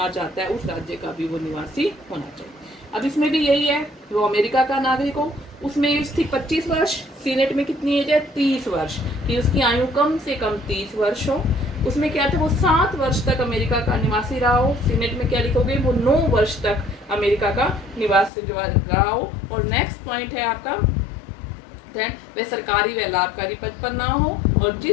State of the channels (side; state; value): right; drops out; at 18.3 s